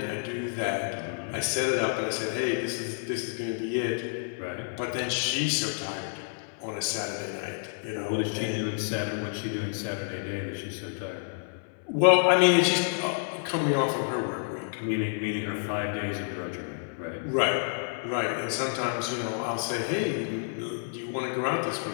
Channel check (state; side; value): silent; right; 58 dB below the other